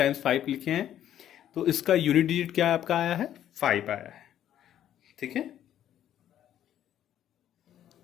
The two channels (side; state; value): right; quieter; 11.1 dB